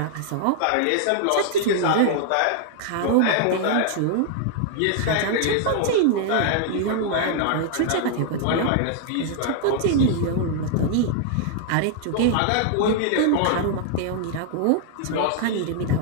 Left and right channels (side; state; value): both; different; correlation -0.01